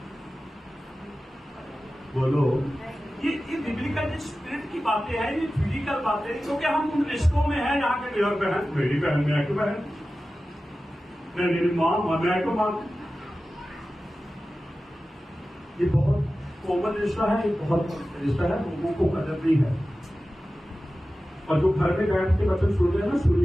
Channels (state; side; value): normal; both; correlation 0.95